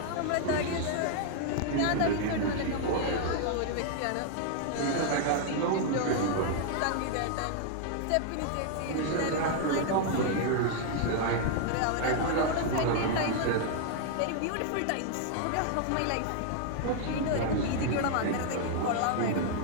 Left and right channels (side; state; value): both; different; correlation 0.00